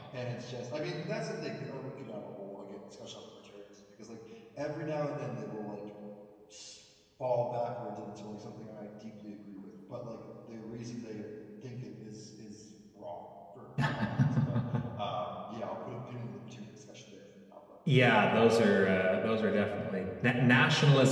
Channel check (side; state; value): both; identical; correlation 1.00